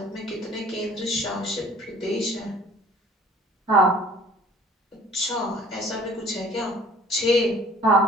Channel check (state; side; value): normal; both; correlation 0.51